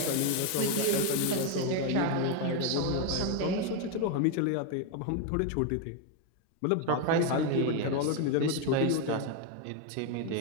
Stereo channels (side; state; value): both; different; correlation 0.01